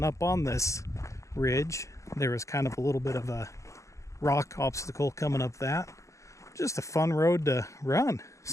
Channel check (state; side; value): late; right; 0.15 ms